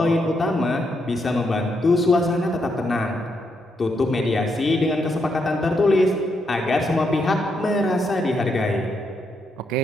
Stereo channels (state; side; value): normal; both; correlation 0.79